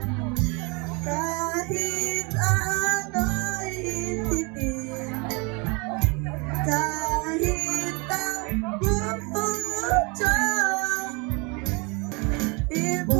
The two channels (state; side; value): quieter; left; 30.2 dB